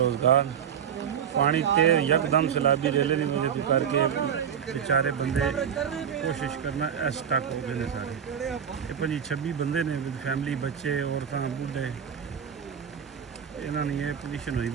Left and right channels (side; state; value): left; quieter; 8.2 dB